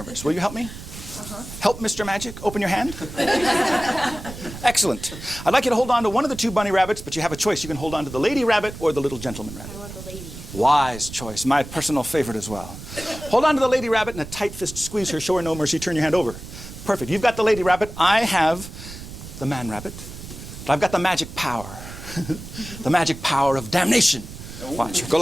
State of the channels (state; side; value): noise; right; rumble, 12 dB below the sound